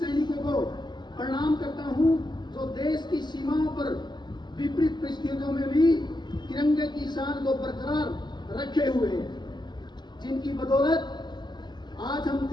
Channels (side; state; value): right; late; 0.21 ms